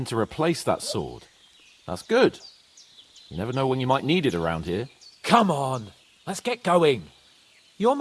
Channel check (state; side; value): identical; both; correlation 1.00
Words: to replace that sword. That's good. You never know when you might need it around here. Come on, let's get going. Your